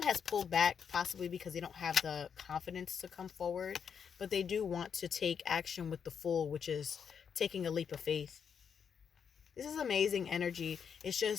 has pulled back, possibly because they don't have the confidence to come forward, but they do want to take action with the Fool, which is taking a leap of faith. This is amazing energy. It's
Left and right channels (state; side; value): quieter; right; 7.1 dB